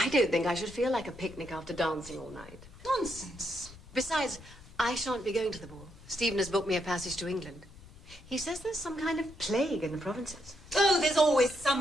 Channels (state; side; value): noise; left; rumble, 20 dB below the sound